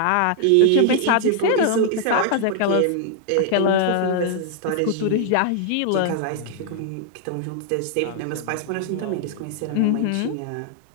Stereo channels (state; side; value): different; both; correlation 0.00